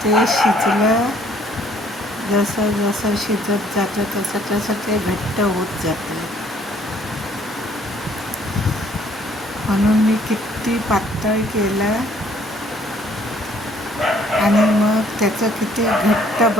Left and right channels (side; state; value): both; normal; correlation 0.62